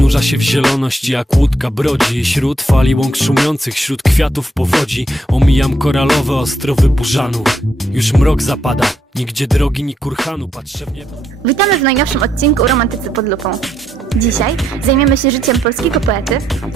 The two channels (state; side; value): normal; both; correlation 0.76